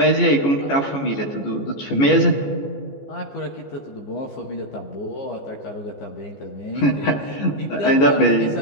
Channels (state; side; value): late; right; 14 ms